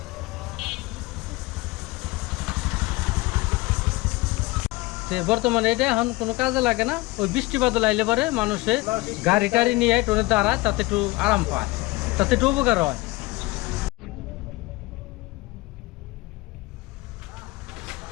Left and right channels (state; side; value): quieter; right; 21.4 dB